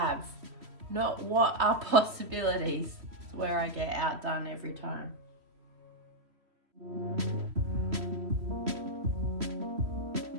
not what are possibilities. It's where I get outdone every time.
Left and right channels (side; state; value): left; late; 3.1 ms